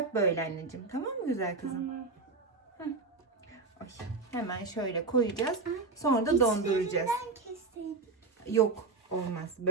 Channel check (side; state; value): left; quieter; 4.0 dB